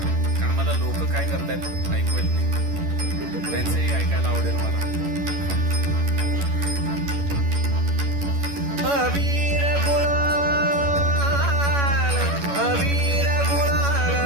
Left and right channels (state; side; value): late; left; 11 ms